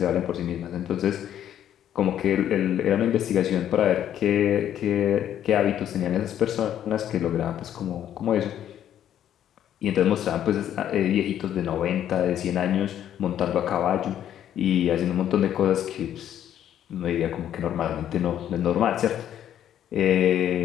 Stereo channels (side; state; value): right; quieter; 10.6 dB